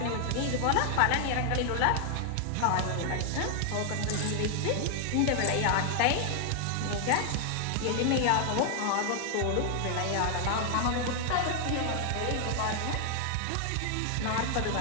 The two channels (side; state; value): both; different; correlation 0.00